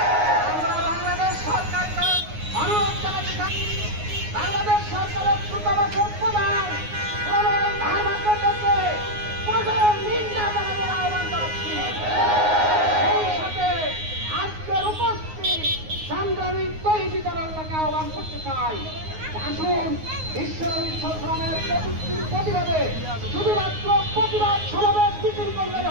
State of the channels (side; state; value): left; late; 9.5 ms